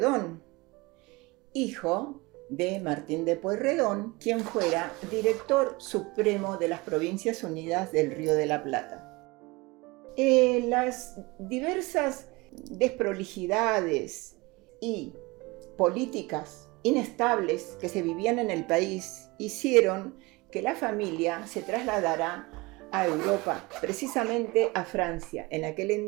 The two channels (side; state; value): left; quieter; 24.2 dB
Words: hijo de Martín de Pueyrredón, quien fuera director supremo de las Provincias Unidas del Río de la Plata. Las diversas desprolijidades y políticas inestables que se vivían en el país hicieron que la familia se trasladara a Europa, precisamente a Francia. En aquel